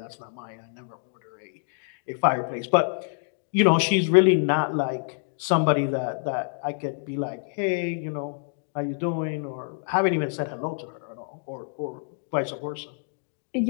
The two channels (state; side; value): silent; right; digital silence